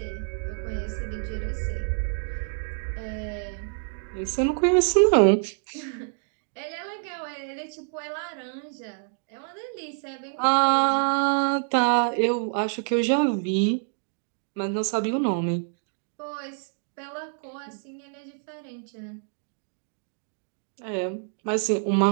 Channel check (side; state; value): left; silent; 60 dB below the other